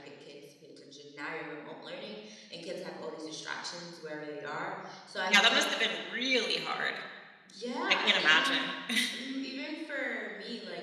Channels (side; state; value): both; identical; correlation 1.00